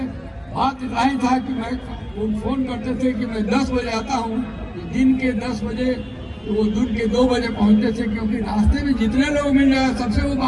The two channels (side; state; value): both; identical; correlation 1.00